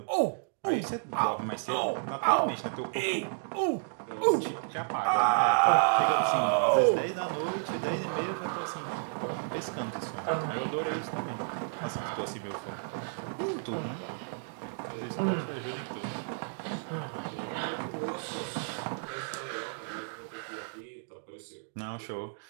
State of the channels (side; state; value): left; silent; digital silence